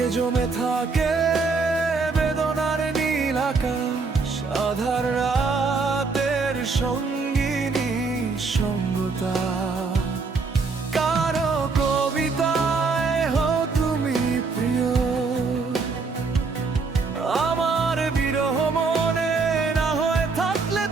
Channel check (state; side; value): quieter; left; 4.4 dB